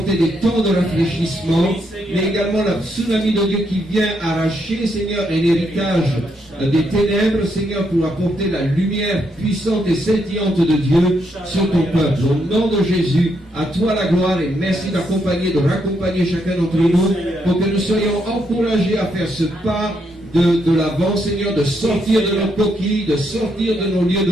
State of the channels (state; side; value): normal; both; correlation 0.77